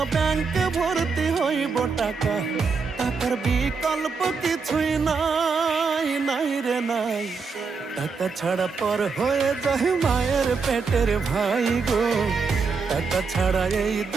ব্যাংকে ভর্তি হইব টাকা, টাকার বিকল্প কিছুই নাই, নাই রে নাই। টাকা ছাড়া পর হয়ে যায় মায়ের পেটের ভাই গো, টাকা ছাড়া এই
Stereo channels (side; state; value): left; quieter; 5.0 dB